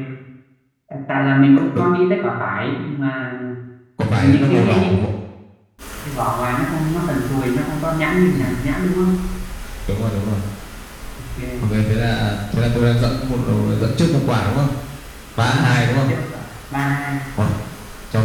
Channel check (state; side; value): identical; both; correlation 1.00